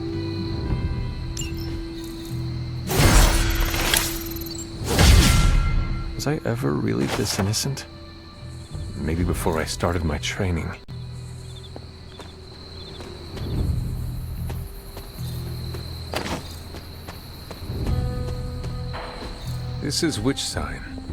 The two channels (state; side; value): identical; both; correlation 1.00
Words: Was I ever really this innocent? Maybe before I started my training. This is which sign?